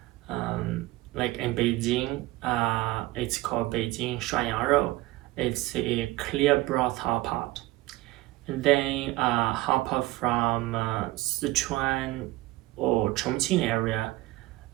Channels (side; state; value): left; quieter; 18.8 dB